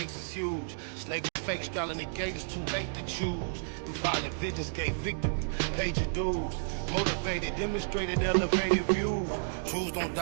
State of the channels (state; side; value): silent; left; digital silence